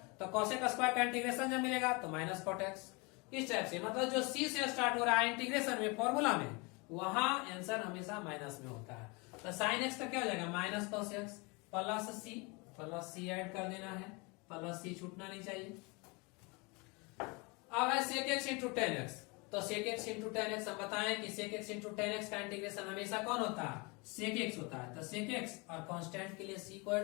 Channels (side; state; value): right; quieter; 28.7 dB